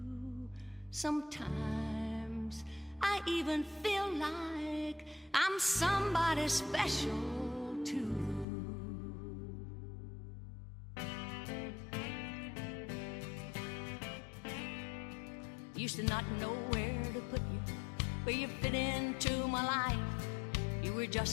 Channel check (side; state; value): right; drops out; at 8.5 s